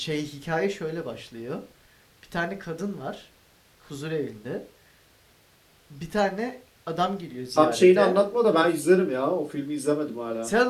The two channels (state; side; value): identical; both; correlation 1.00